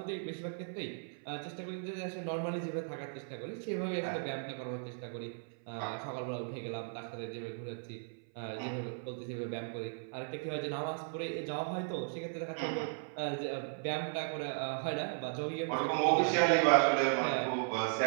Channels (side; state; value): left; silent; 53 dB below the other